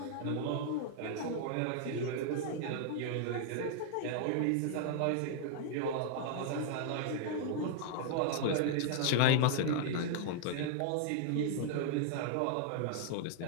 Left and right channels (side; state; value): both; different; correlation 0.00